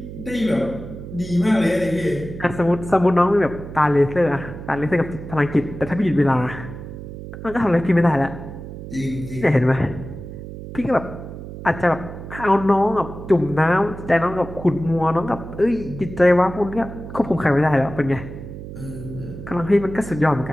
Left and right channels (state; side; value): noise; right; hum, 11 dB below the sound